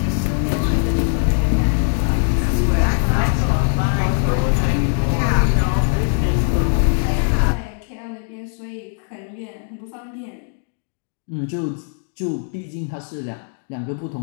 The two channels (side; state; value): right; silent; 65 dB below the other